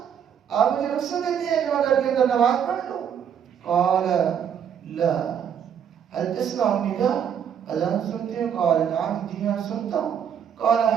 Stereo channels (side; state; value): left; quieter; 8.3 dB